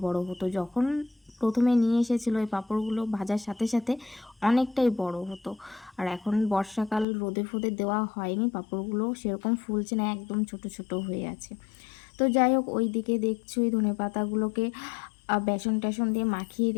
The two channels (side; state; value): right; drops out; at 7.1 s